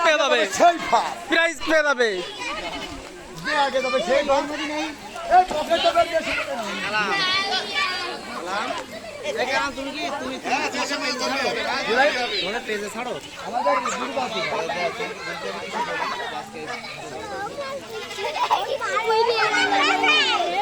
পেয়ে যাবে, প্রাইজ পেয়ে যাবে।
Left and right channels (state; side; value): identical; both; correlation 1.00